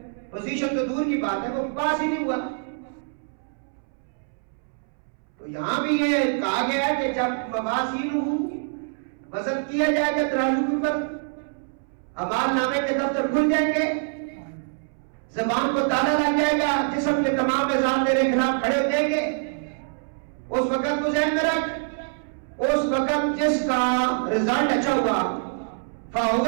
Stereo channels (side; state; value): left; silent; 62 dB below the other